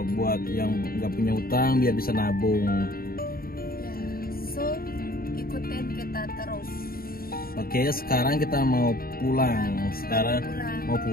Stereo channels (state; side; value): late; right; 0.43 ms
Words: buat yang nggak punya hutang biar bisa nabung. So ikutin kita terus. Oke, sekarang kita mau pulang.